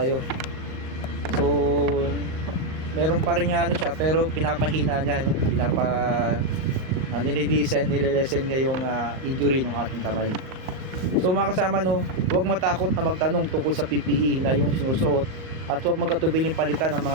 So meron pa rin siya, pero pinapahina niya, nililesen niya yung injury ng ating kamay. So mga kasama, huwag matakot na magtanong tungkol sa PPE na yung sinusuot, at huwag magkatubiling palitan ng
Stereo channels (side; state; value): left; late; 38 ms